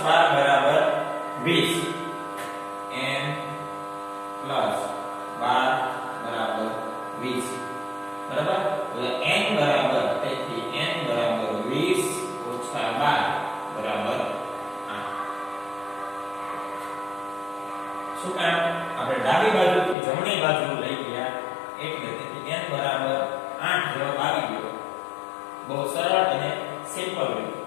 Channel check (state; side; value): drops out; right; at 20.0 s